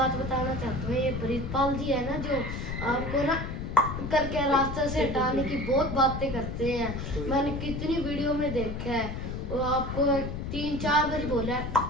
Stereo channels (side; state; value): left; noise; rumble, 5 dB below the sound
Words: बताना चाहता हूँ, ये प्रीतपाल जी है ना, जो आपको ना करके रास्ते से हटाने की बहुत बातें करते हैं। मैंने कितनी वीडियो में देखा है, और आपको 3-4 बार बोला है